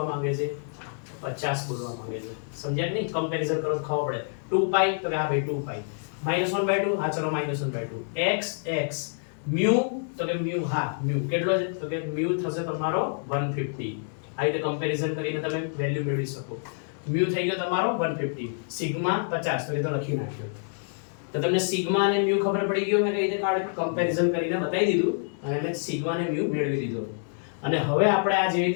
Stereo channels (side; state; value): right; silent; digital silence